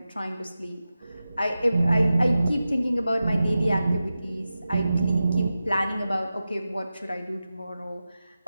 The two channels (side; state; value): both; inverted; correlation -0.93